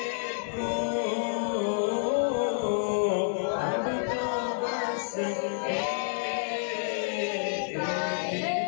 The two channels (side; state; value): right; silent; 59 dB below the other